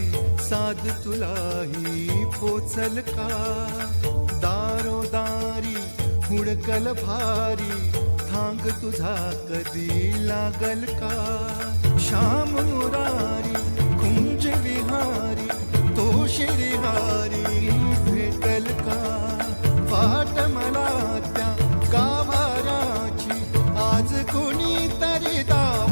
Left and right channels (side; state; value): both; inverted; correlation -1.00